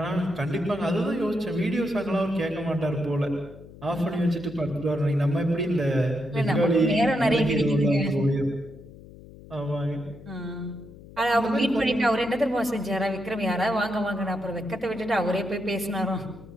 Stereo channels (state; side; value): noise; left; hum, 19 dB below the sound